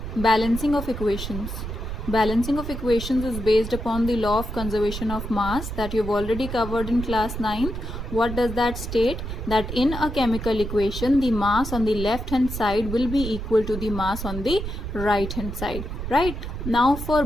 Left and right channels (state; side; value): noise; right; rumble, 6 dB below the sound